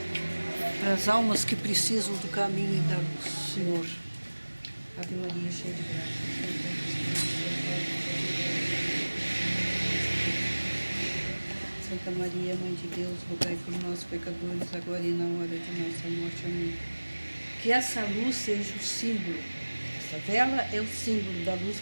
As almas que precisam do caminho e da luz, Senhor. Ave Maria, cheia de graça. Santa Maria, Mãe de Deus, rogai por nós, pecadores, agora e na hora de nossa morte. Amém. Que essa luz seja o símbolo, essa vela é o símbolo da luz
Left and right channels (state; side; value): inverted; both; correlation -1.00